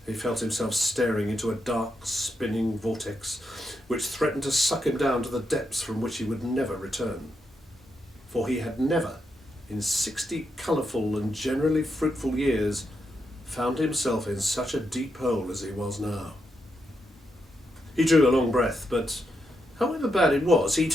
He felt himself staring into a dark, spinning vortex, which threatened to suck him down to the depths from which he would never return. For he had never, in 60 colourful and generally fruitful years, found himself in such a deep hole as he was now. He drew a long breath, but however bad it was, he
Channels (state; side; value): normal; both; correlation 0.83